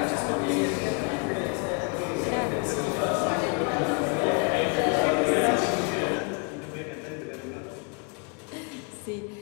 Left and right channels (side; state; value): right; quieter; 34.8 dB